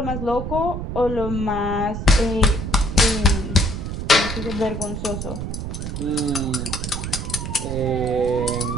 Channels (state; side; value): noise; right; rumble, 5 dB below the sound